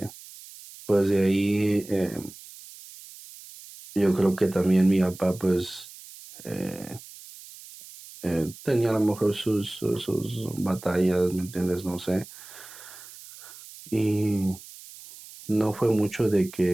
pues de ahí yo creo que también mi papá pues eh, tenía a lo mejor sus batallas, ¿me entiendes? No sé. Y no fue mucho de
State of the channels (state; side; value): noise; right; hiss, 18 dB below the sound